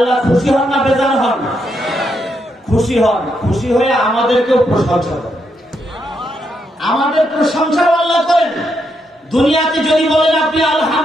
খুশি হন না বেজার হন? খুশি হন। খুশি হয়ে আমাদেরকেও প্রশংসা করেন, আমাদের প্রশংসাও আল্লাহ করেন। দুনিয়াতে যদি বলেন আপনি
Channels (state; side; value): normal; both; correlation 0.79